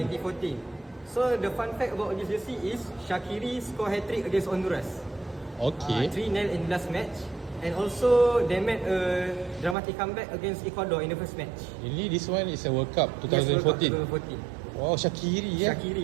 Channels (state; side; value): drops out; left; at 9.8 s